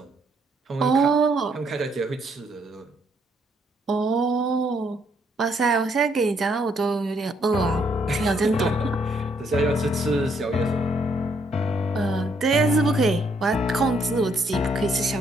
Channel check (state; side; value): normal; both; correlation 0.70